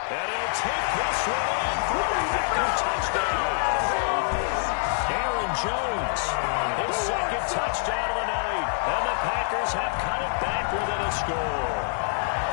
And he'll take this one in for a Packer touchdown. Aaron Jones, his 2nd touchdown of the night. And the Packers have cut it back within a score.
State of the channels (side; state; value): right; silent; digital silence